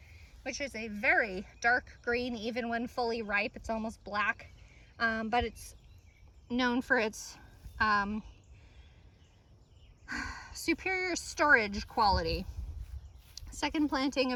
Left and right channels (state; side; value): identical; both; correlation 1.00